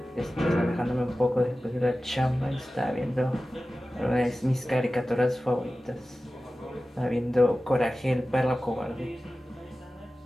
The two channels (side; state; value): both; normal; correlation 0.95